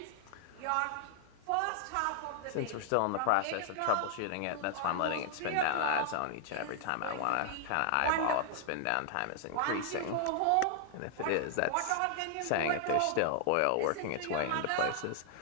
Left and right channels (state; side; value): different; both; correlation 0.00